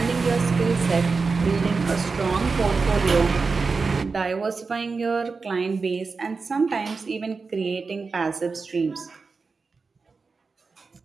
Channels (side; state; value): left; quieter; 4.5 dB